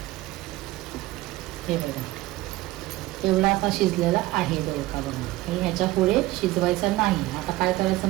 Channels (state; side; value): quieter; left; 18.0 dB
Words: हे बघा एवढा आता शिजलेला आहे दोडका. बघा हे ह्याच्या पुढे शिजवायचा नाही. आता काय करायचं